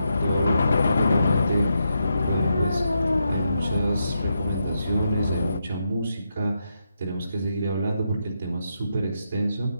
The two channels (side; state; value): both; inverted; correlation -0.83